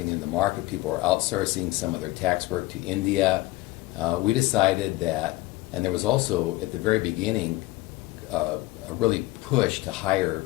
in the market. People were outsourcing some of their tax work to India. We decided that, and there was also at the very beginning a really push to hire.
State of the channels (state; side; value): quieter; right; 19.0 dB